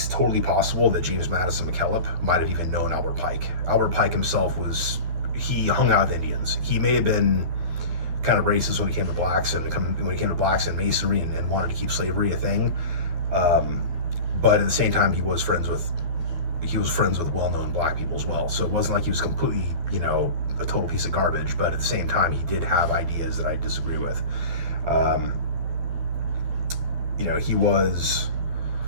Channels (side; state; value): left; late; 11 ms